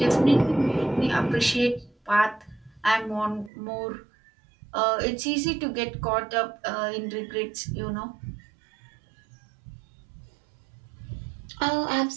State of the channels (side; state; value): left; drops out; at 3.5 s